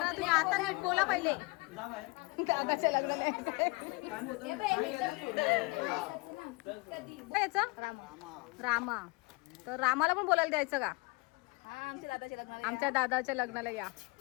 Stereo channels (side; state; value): right; quieter; 26.9 dB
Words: तुम्ही आता नीट बोला पहिले दादाच्या याचा रामा तर रामाला पण बोलायला द्यायचं का आमच्या दादाच्या लग्नाला या